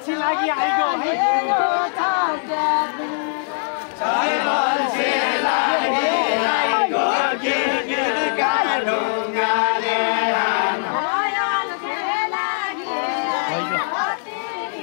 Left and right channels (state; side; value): silent; right; digital silence